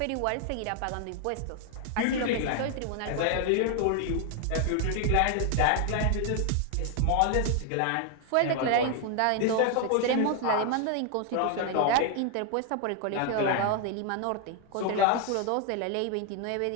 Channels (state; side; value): different; both; correlation 0.00